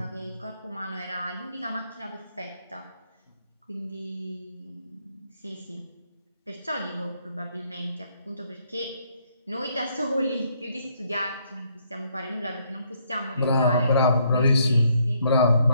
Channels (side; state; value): both; inverted; correlation -0.70